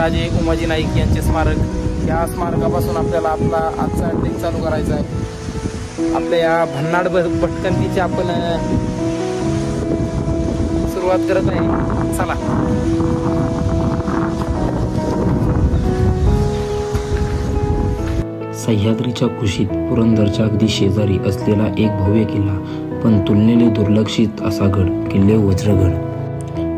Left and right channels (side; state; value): both; identical; correlation 1.00